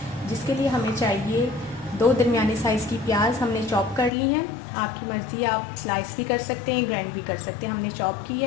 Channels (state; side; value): drops out; right; at 4.1 s